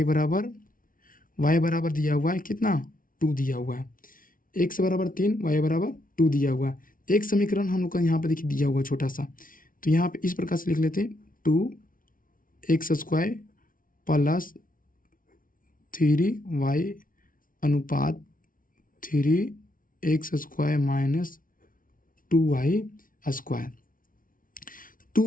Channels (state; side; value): late; right; 0.40 ms